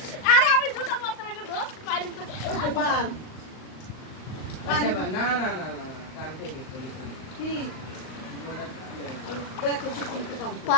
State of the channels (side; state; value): right; late; 39 ms